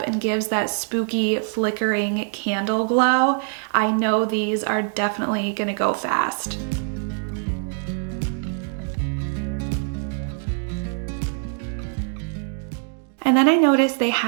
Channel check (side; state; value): left; silent; 57 dB below the other